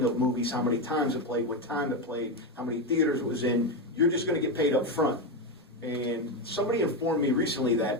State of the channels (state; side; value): normal; both; correlation 0.11